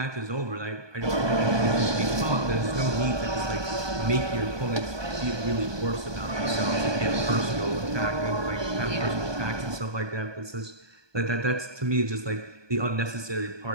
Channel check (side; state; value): left; late; 1.2 ms